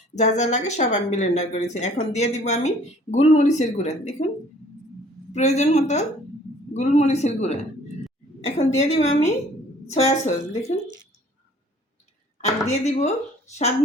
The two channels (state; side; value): normal; both; correlation 0.55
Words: যা যা লাগে সব আমি ব্লেন্ডার করেছি। এখন দিয়ে দিব আমি গোলমরিচের গুঁড়া, দেখুন প্রয়োজন মতো গোলমরিচের গুঁড়া। এখন দিয়ে দিব আমি সয়া সস, দেখুন। আর দিয়ে দিব স্বাদ